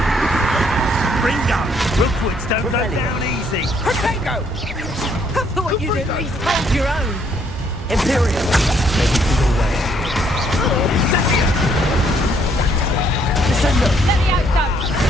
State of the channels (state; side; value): normal; both; correlation 0.68